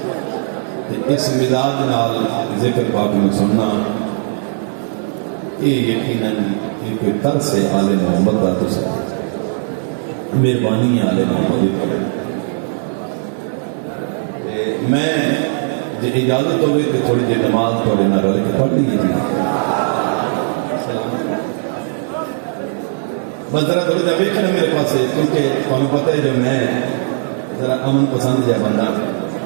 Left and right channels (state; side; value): silent; left; 60 dB below the other